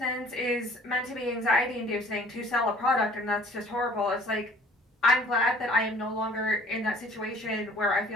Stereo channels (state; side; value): normal; both; correlation 0.52